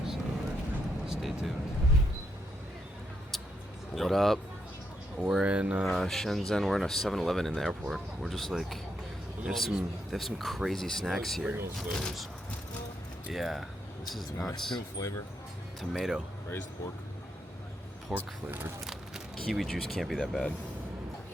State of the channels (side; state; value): both; normal; correlation 0.80